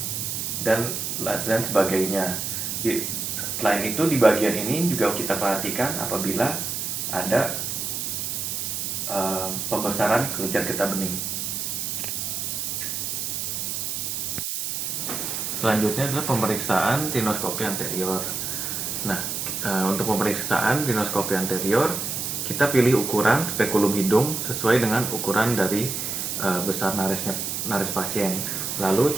dan sebagainya. Selain itu di bagian ini juga kita perhatikan apabila ada pembesaran kelenjar getah bening. Selanjutnya adalah pemeriksaan rinoskopi anterior. Nah, untuk pemeriksaan rinoskopi anterior, kita pilih ukuran spekulum hidung sesuai dengan ukuran dari besar naris pasien. Lalu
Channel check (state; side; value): noise; right; hiss, 3 dB below the sound